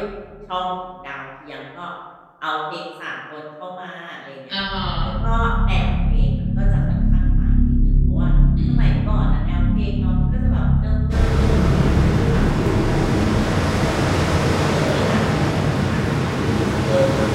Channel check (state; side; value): identical; both; correlation 1.00